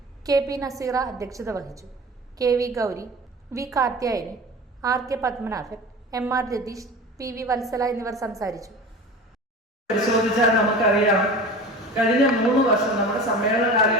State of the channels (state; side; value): normal; both; correlation 0.35